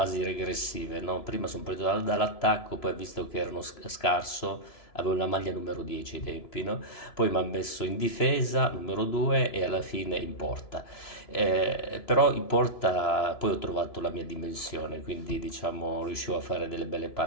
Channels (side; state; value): right; late; 2.9 ms